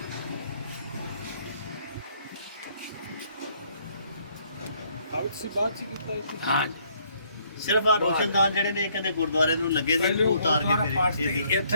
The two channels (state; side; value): inverted; both; correlation -0.67